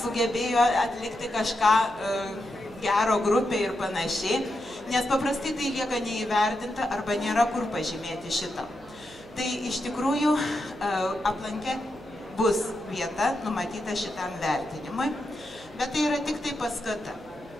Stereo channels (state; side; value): noise; right; hum, 25 dB below the sound